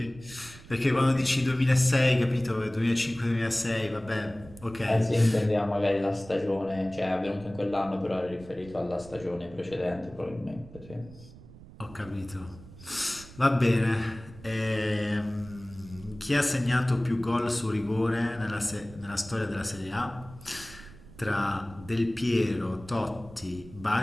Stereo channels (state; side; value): noise; right; rumble, 19 dB below the sound